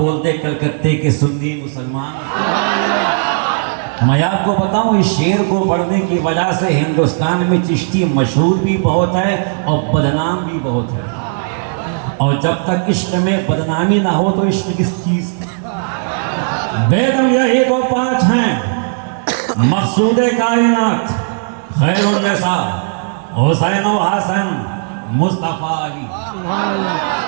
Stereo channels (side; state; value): left; silent; digital silence